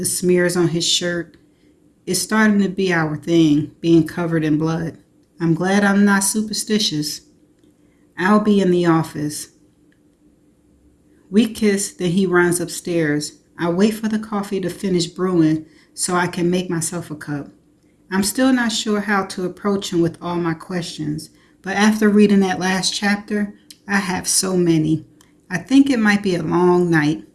smears on his shirt. It's starting to be our thing, being covered in blood. I'm glad I'm not superstitious. I'll be in the office. We kiss, then he runs upstairs. I wait for the coffee to finish brewing so I can make myself a cup. I'm still not sure how to approach him with all my questions, but after reading that last chapter, I have so many. I think it might be a long night.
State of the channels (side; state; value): both; identical; correlation 1.00